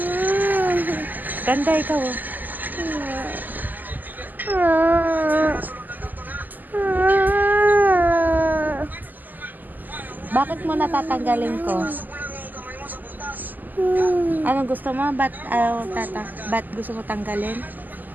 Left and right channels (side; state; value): left; late; 0.085 ms